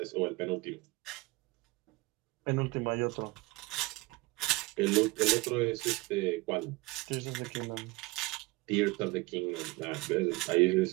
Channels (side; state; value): left; quieter; 22.4 dB